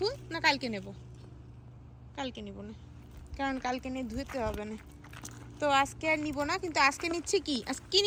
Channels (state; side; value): identical; both; correlation 1.00